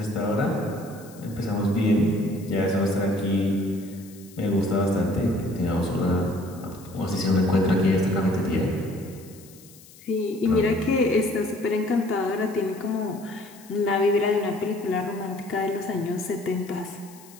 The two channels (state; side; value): noise; left; hiss, 22 dB below the sound